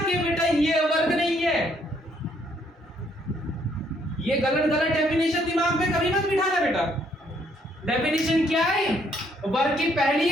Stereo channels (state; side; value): normal; both; correlation 0.68